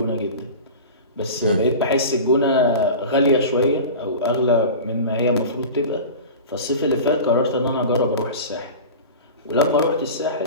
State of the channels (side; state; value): both; inverted; correlation -0.33